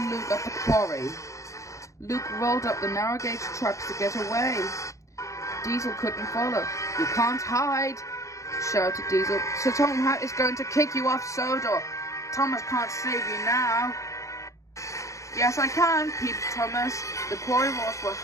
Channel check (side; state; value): right; late; 0.15 ms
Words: Luke at the quarry. Luke rolled up the narrow-gauge tracks to get away. Diesel couldn't follow. You can't hide, shouted Diesel. Sir Topham Hatt is going to kick you off Sodor. Thomas can't save you now. Yes, I can, peeped Thomas. The quarry walls were